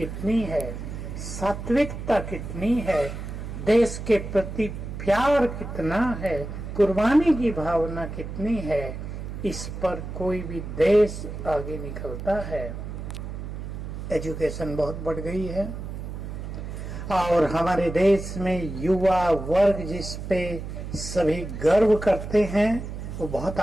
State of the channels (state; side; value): noise; right; hum, 8 dB below the sound